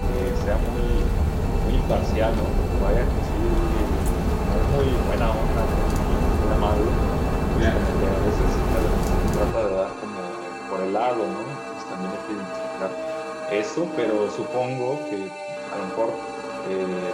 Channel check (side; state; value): both; identical; correlation 1.00